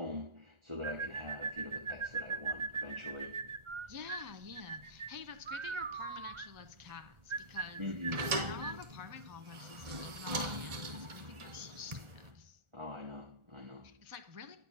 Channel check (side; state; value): left; late; 1.4 ms